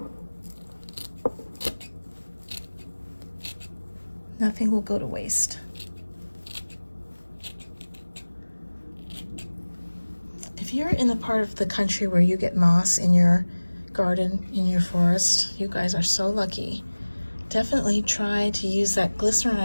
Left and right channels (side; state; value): both; inverted; correlation -1.00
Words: Nothing will go to waste. If you're in the part of the country where you get moss in your garden, in your forest, you guys are so lucky. Definitely try to use that glycerin